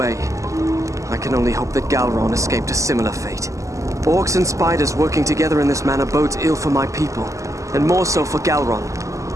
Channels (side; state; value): left; late; 0.16 ms